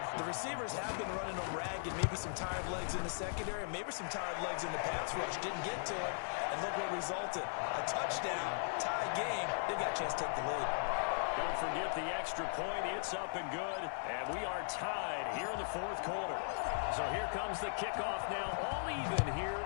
The receivers have been running them ragged. Maybe some tired legs in the secondary. Maybe some tired legs in the pass rush. Didn't get to it. And look what resulted. A touchdown. Tie game. They've got a chance to take the lead. Don't forget the extra point. It's up and good. And we are tied here in the 4th quarter. So here comes the kickoff now. All even here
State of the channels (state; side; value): silent; right; 52 dB below the other